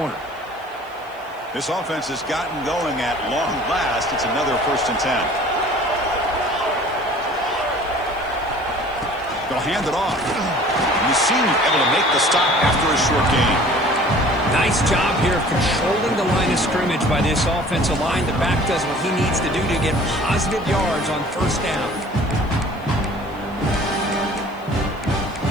This offense has gotten going at long last. It's another 1st and 10. They'll hand it off. And the senior able to make the stop after a short gain. Nice job here of controlling the line of scrimmage by this offensive line. The back does what he needs to do to get positive yards on 1st down.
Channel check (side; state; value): left; noise; hiss, 29 dB below the sound